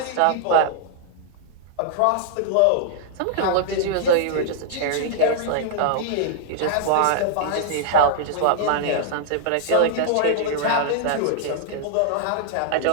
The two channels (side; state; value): both; different; correlation -0.01